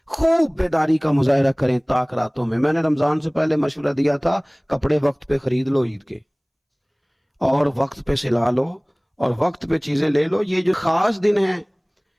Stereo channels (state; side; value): identical; both; correlation 1.00